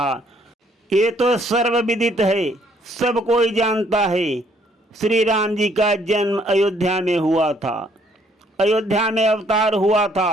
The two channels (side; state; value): both; normal; correlation 0.66